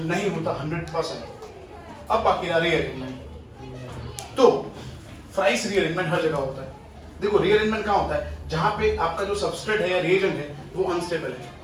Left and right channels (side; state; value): both; identical; correlation 1.00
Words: नहीं होता 100%। अब बाकी रहा रीअरेंजमेंट। तो फ्राइस रीअरेंजमेंट हर जगह होता है। देखो रीअरेंजमेंट कहां होता है? जहां पे आपका जो सबस्ट्रेट है या रिएजेंट है वो अनस्टेबल है।